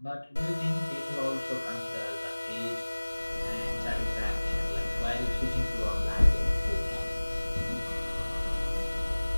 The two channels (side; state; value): both; inverted; correlation -1.00